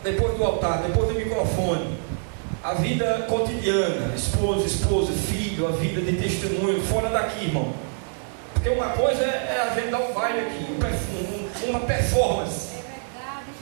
depois do altar, depois do microfone, a vida cotidiana, esposa, filho, a vida de testemunho, fora daqui, irmão. Porque uma coisa é a gente dar um baile aqui, uma performance. É verdade,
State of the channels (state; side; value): silent; left; digital silence